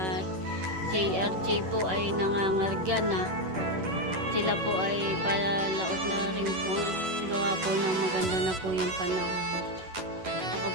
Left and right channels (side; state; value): left; late; 11 ms